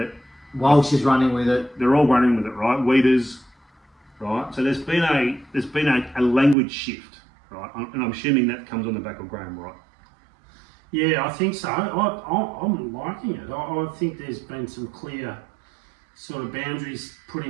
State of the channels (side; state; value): left; drops out; at 6.6 s